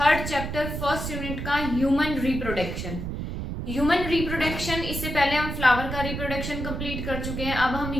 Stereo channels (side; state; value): right; noise; rumble, 5 dB below the sound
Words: chapter first unit का ह्यूमन रिप्रोडक्शन। ह्यूमन रिप्रोडक्शन, इससे पहले हम फ्लावर का रिप्रोडक्शन कंप्लीट कर चुके हैं। अब हम